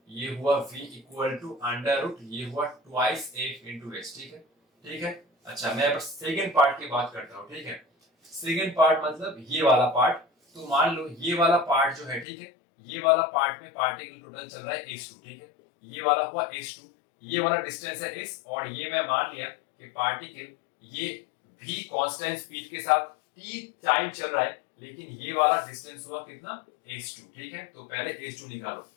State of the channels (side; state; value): right; drops out; at 12.2 s